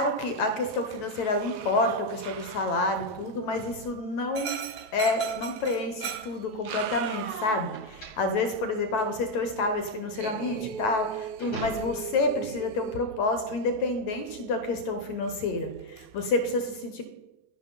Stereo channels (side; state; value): right; late; 9.1 ms